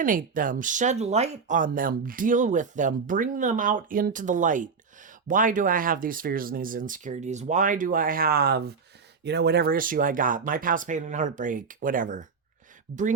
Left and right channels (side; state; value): left; quieter; 5.3 dB